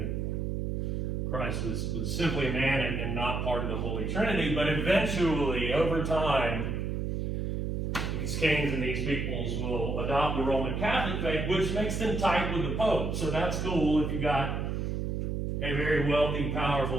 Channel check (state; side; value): noise; right; hum, 1 dB below the sound